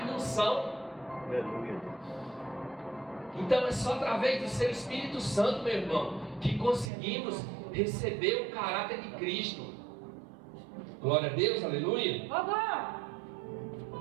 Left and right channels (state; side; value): drops out; left; at 6.9 s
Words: não são. Aleluia, Deus. Então é só através do seu Espírito Santo, meu irmão, que conseguimos receber o caráter de Cristo. Glória a Deus, aleluia. Vovó!